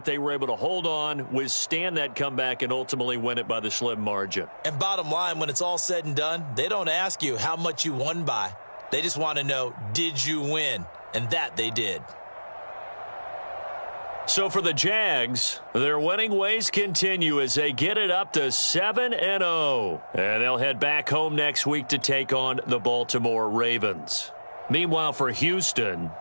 They were able to hold on, withstand that comeback, and ultimately win it by the slim margin. And bottom line, when it's all said and done, they don't ask you how much you won by. They just want to know, did you win? And that they did. So for the Jags, their winning ways continue as they get it up to 7-0. And they'll head back home next week to take on the Baltimore Ravens. Meanwhile, for Houston,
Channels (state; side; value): inverted; both; correlation -1.00